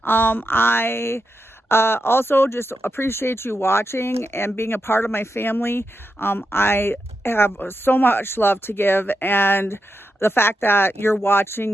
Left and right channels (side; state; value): both; normal; correlation 0.88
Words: I also just appreciate you watching and being a part of my family. I have so much love to give, and the fact that you're